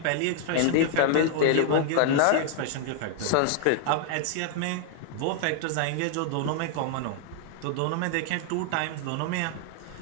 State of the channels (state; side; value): different; both; correlation 0.00